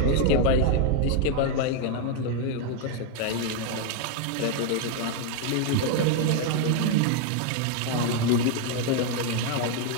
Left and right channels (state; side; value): different; both; correlation 0.01